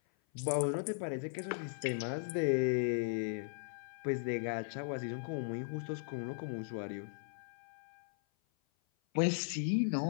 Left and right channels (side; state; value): right; silent; 53 dB below the other